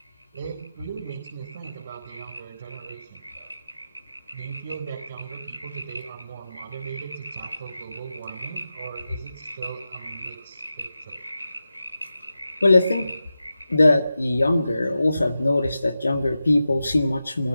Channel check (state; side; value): inverted; both; correlation -0.92